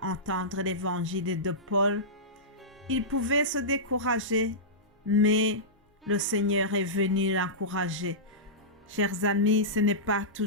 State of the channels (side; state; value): both; normal; correlation -0.16